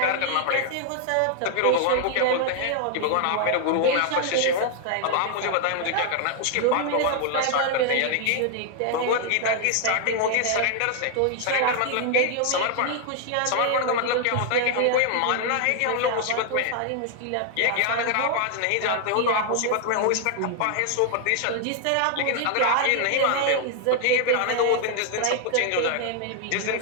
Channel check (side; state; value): both; different; correlation 0.00